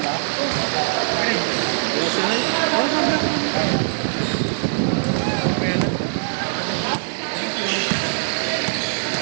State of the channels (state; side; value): silent; left; digital silence